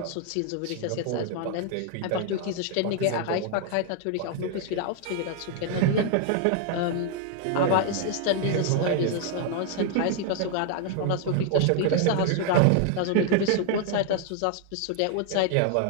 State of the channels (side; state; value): both; different; correlation 0.00